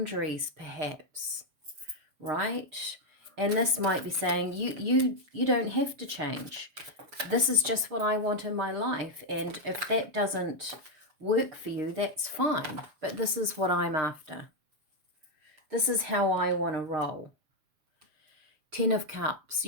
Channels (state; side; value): late; left; 6.5 ms